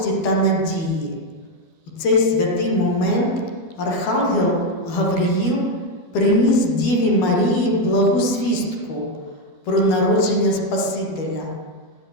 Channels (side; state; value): right; late; 12 ms